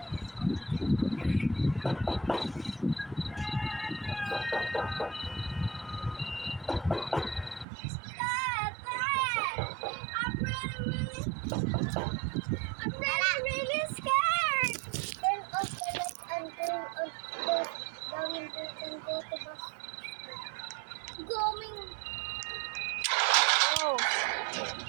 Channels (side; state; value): left; drops out; at 7.7 s